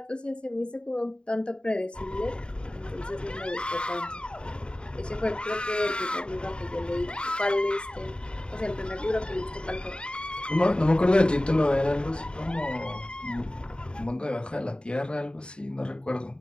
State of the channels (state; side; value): late; right; 0.051 ms